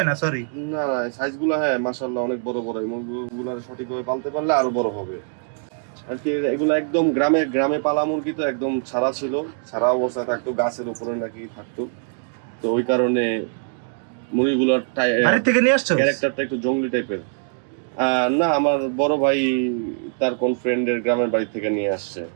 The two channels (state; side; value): silent; left; 64 dB below the other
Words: না। সরি, না, সাইজগুলো হ্যাঁ মাশাআল্লাহ অনেক বড় বড়। এই মুরগিগুলো সঠিকভাবে পালতে পারলে আরো বড় হবে আর কি। এগুলো একদম গ্রামে পালা মুরগি, তো একদম ছাড়া অবস্থায় থাকতো, গাছের উপরে নাকি থাকতো। তো ওই কারণে মুরগিগুলোর বাড়ি থেকে নিয়ে আসছো? ক্যারেক্টারটা একটু জঙ্গলি টাইপের। না, আমার বড় ভাই তার কোন ফ্রেন্ডের গ্রামের বাড়ি থেকে নিয়ে আসছে।